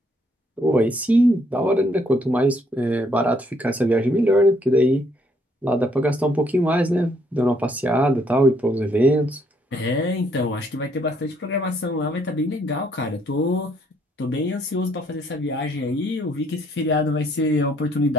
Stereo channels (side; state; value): both; normal; correlation 0.69